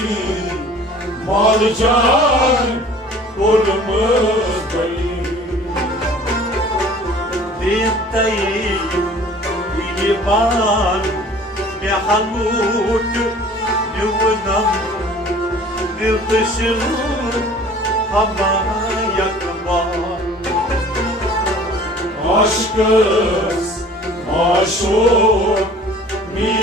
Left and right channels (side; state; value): both; normal; correlation 0.48